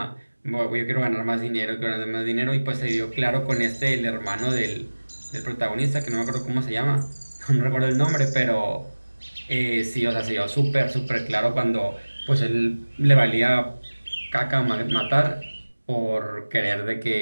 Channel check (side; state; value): both; inverted; correlation -1.00